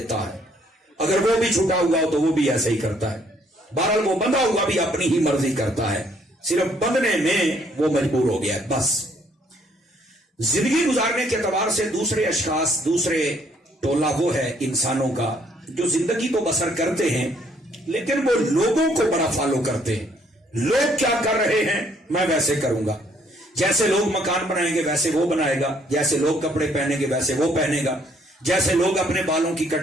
ہے. اگر وہ بھی چھٹا ہوا ہو تو وہ بھی ایسے ہی کرتا ہے. بہرحال وہ بندہ ہوا بھی اپنی ہی مرضی کرتا ہے، صرف بندنے میں وہ مجبور ہو گیا ہے. بس زندگی گزارنے کے اعتبار سے دوسرے اشخاص، دوسرے ٹولہ وہ ہے انسانوں کا جو زندگی تو بسر کرتے ہیں لیکن وہ لوگوں کو بڑا فالو کرتے ہیں. لوگ کیا کر رہے ہیں میں ویسے کروں گا، جیسے لوگ مکان بنائیں گے ویسے وہ بنائے گا، جیسے لوگ کپڑے پہنیں گے ویسے وہ پہنے گا، جیسے لوگ اپنے بالوں کی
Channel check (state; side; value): normal; both; correlation 0.66